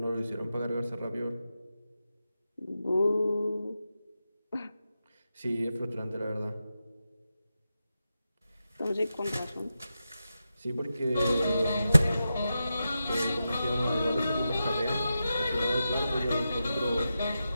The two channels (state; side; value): inverted; both; correlation -0.90